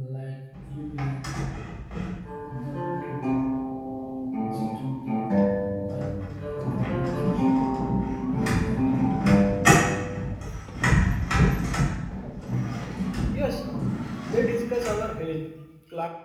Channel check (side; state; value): both; identical; correlation 1.00